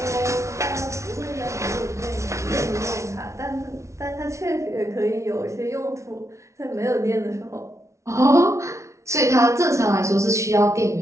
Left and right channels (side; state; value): left; late; 0.14 ms